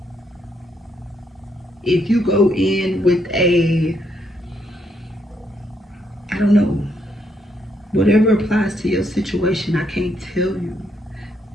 If you go in with a, I don't know. Whatever applies to your situation, I can't tell you.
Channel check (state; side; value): normal; both; correlation 0.75